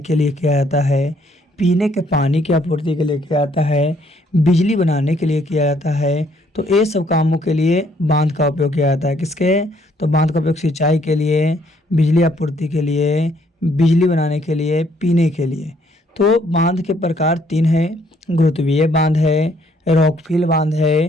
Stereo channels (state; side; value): normal; both; correlation 0.67